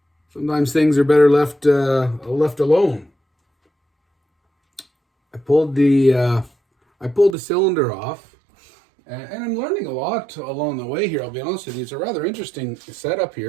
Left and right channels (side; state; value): left; drops out; at 7.4 s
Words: sometimes things are better left alone. I pulled the cylinder off, and I'm learning a lot along the way here. I'll be honest with you. It's a rather interesting setup